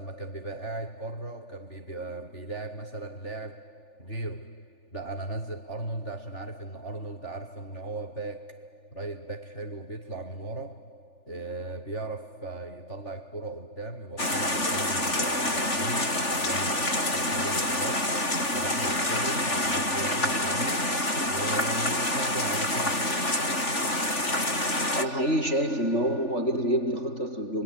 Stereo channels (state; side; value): late; right; 3.4 ms